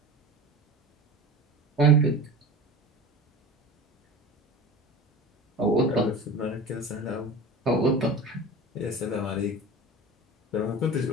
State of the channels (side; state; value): both; normal; correlation 0.34